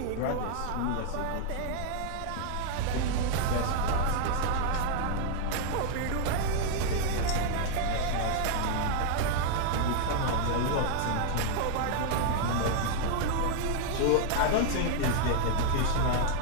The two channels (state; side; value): different; both; correlation 0.00